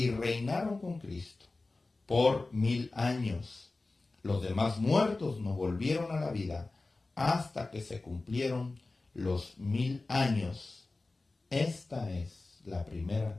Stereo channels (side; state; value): right; quieter; 3.3 dB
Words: reinaron con Cristo por 1000 años. Los demás muertos no volvieron a la vida hasta que se cumplieron los 1000 años. Esta es la